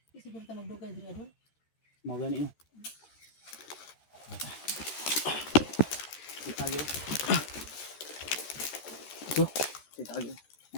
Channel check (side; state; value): right; late; 13 ms